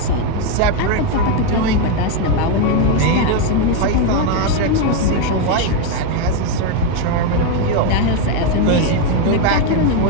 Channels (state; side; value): different; both; correlation 0.02